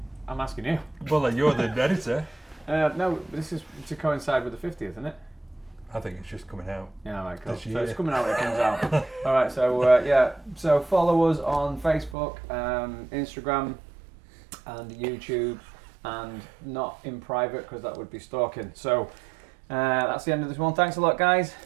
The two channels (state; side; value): drops out; left; at 12.2 s